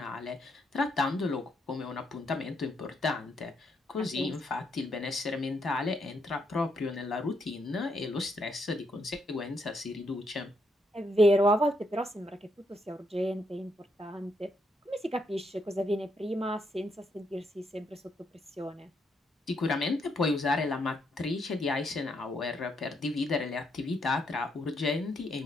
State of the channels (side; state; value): both; normal; correlation 0.76